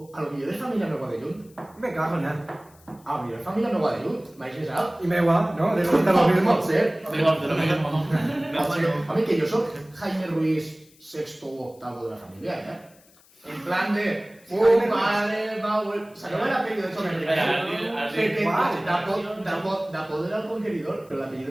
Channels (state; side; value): noise; left; hiss, 28 dB below the sound